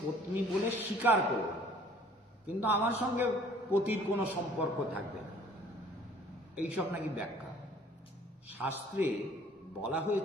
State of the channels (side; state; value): both; normal; correlation 0.54